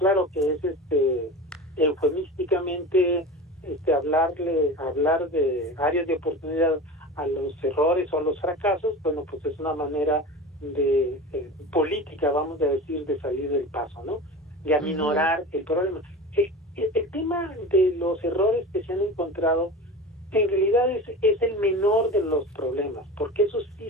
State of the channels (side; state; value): both; normal; correlation 0.31